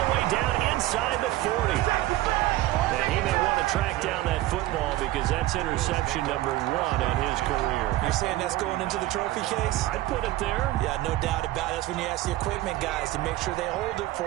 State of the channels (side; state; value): left; quieter; 16.4 dB